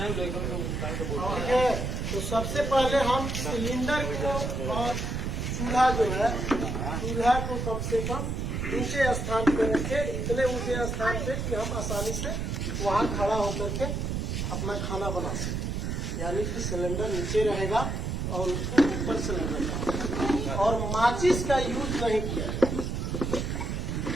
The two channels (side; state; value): right; noise; rumble, 2 dB below the sound